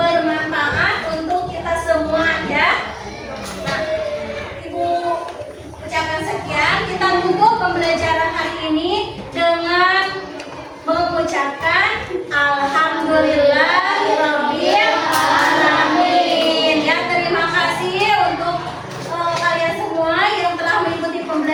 untuk kita semua ya. Nah, Ibu ucapkan sekian. Kita tutup pembelajaran hari ini dengan mengucapkan Alhamdulillahirabbil alamin. Ya, terima kasih untuk kalian semua yang telah mengikuti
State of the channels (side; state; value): both; identical; correlation 1.00